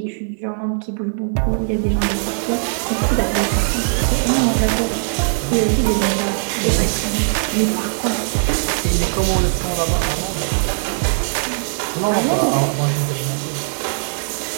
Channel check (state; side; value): silent; left; digital silence